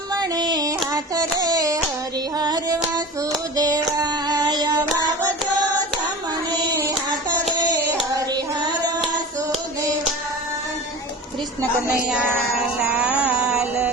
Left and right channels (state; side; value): normal; both; correlation 0.34